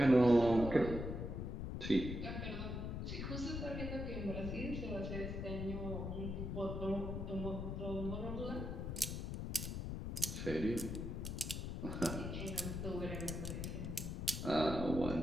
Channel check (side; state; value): left; noise; rumble, 4 dB below the sound